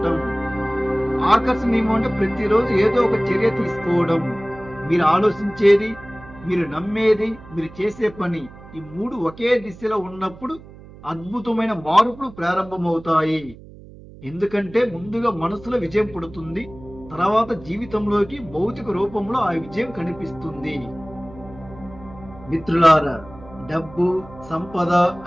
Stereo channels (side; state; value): right; noise; hum, 19 dB below the sound